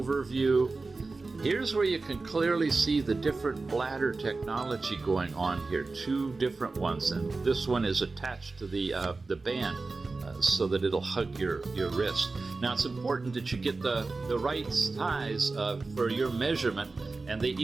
Here's where you can clearly see the different bladder technology going on here, 2 different ones, and this one is attached to the band so that it'll hug your wrist. Now it's important that you get the right size for your measurement, and they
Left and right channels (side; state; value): left; quieter; 3.7 dB